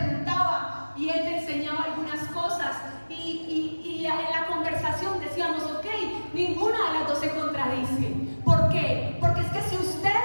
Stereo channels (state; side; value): inverted; both; correlation -1.00